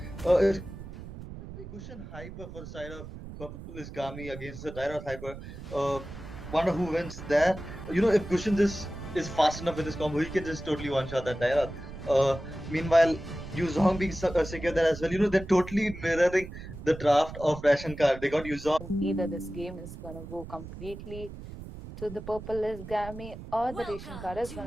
It's gonna be Gushin hyper for the side of Purple is Gami against the Dialog hyper. Uh, Wonder who wins there. If Gushin is fast enough with his combo, he can just totally one shot that Dialog. Meanwhile, Yuzong being secure there as well. They're totally mirroring the draft of Ration Card. They got Yuzong. Either this game is gonna go completely to the purple is Gami or the ration card is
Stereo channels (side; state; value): right; noise; rumble, 12 dB below the sound